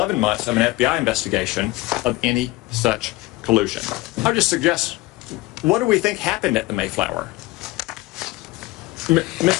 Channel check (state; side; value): quieter; right; 20.2 dB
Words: months of an FBI investigation of any such collusion. I would just suggest, what do we think happened at the Mayflower?